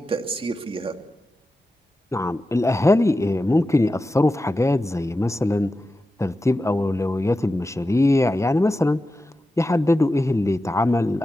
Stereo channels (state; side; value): normal; both; correlation 0.92